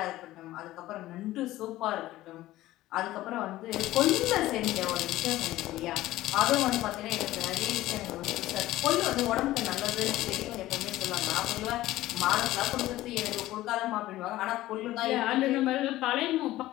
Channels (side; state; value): right; quieter; 16.0 dB